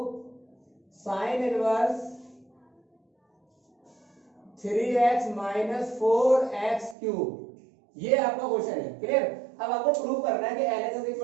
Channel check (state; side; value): drops out; left; at 7.0 s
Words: sin inverse 3x minus 4x cube. ये आपका क्वेश्चन है, क्लियर। अब आपको प्रूव करना है कि LHS